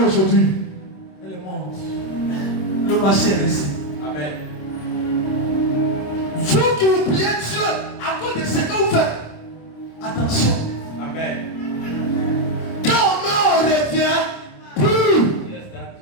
aujourd'hui? Elle est morte. Le marché est resté. Amen. Vous qui vous priez Dieu à cause de ce que vous faites, attention. Amen. Quand on revient plus.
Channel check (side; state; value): right; late; 26 ms